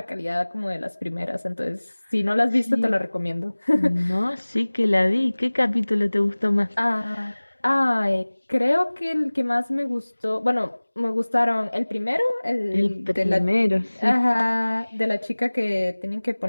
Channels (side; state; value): both; inverted; correlation -1.00